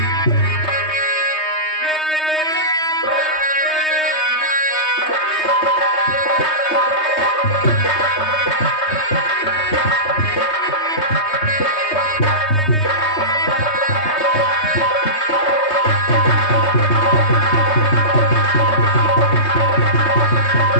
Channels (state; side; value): late; right; 3.2 ms